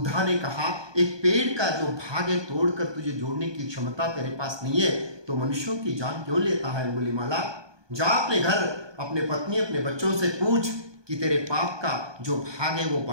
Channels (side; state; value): left; late; 1.2 ms